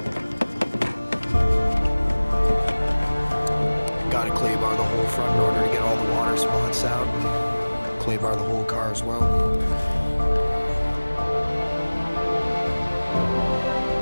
Got to clay bar the whole front in order to get all the water spots out. Clay bar the whole car as well.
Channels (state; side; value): inverted; both; correlation -1.00